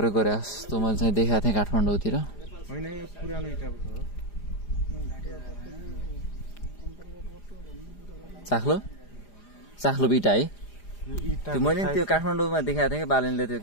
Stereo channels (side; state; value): right; late; 4.9 ms